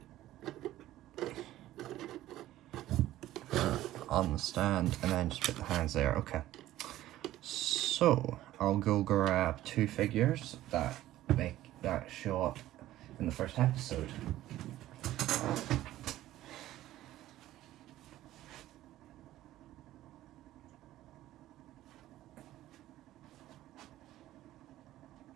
On the stand, and then just put the hands there. Okay. So I'll go grab 2 figures that show up in the first episode.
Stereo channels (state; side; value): quieter; left; 14.6 dB